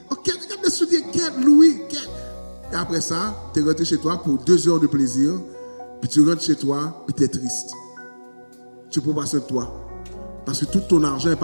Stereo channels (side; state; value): both; inverted; correlation -1.00